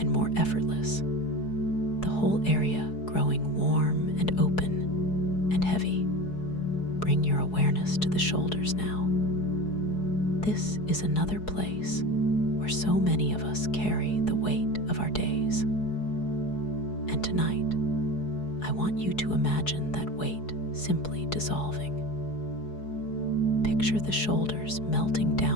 more effortless, the whole area growing warm and open and heavy. Bring your awareness to the shoulders now. This is another place where so many of us carry the weight of our days. And tonight, I want you to imagine that weight simply dissolving. Picture the shoulders melting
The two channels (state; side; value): late; right; 4.7 ms